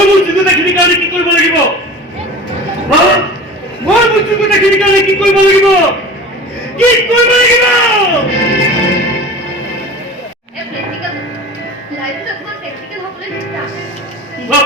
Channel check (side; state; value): both; normal; correlation 0.36